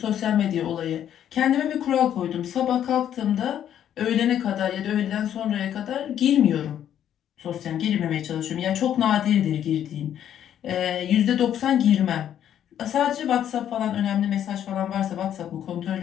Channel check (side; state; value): right; quieter; 10.2 dB